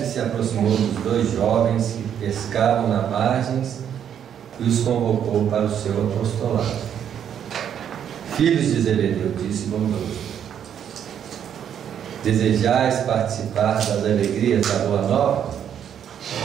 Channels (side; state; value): left; quieter; 9.1 dB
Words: se aproximou dos dois jovens que pescavam na margem e os convocou para o seu apostolado. Filhos de Zebedeu, disse bondoso, desejais participar das alegrias da Boa Nova?